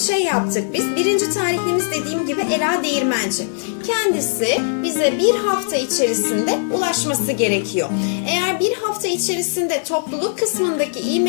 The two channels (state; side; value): silent; right; digital silence